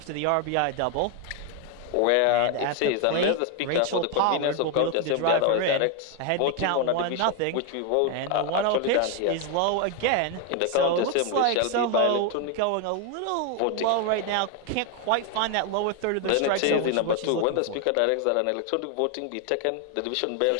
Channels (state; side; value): different; both; correlation 0.01